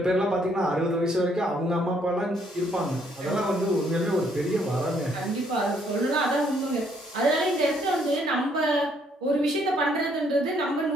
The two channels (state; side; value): normal; both; correlation 0.68